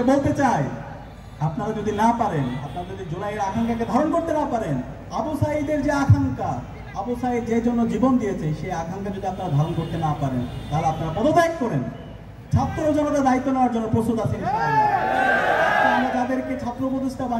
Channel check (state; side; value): identical; both; correlation 1.00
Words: বলতে চাই, আপনারা যদি না পারেন, আপনারা যদি জুলাইয়ের আকাঙ্ক্ষাকে ধারণ করতে না পারেন, আবু সাঈদের যে আকাঙ্ক্ষা, আবু সাঈদ যে জন্য জীবন দিয়েছে, সেই আকাঙ্ক্ষা যদি আপনারা ধারণ করতে না পারেন, তাহলে আপনারা পদত্যাগ করেন। ছাত্র জনতা দায়িত্ব নেওয়ার জন্য প্রস্তুত আছেন ইনশাআল্লাহ। আমরা যাদেরকে ছাত্র উপদেষ্টা